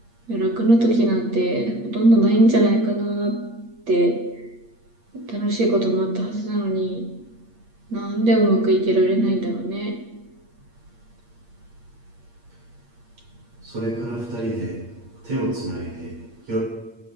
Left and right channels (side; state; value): left; late; 8.5 ms